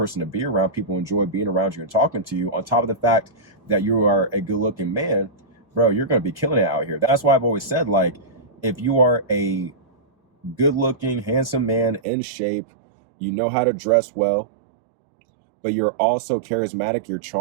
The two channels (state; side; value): drops out; left; at 12.0 s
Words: to be around, people enjoy being around you and talking to you, on top of the fact that you are a good looking man, bro, you're going to be killing it out here. That's why I've always said, like, if you are a good looking, handsome man in shape, you know how to dress well, but you're also charismatic, you're